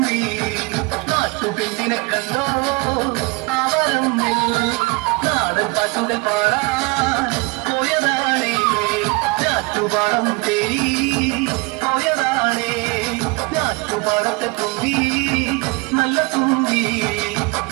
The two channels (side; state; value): left; quieter; 26.3 dB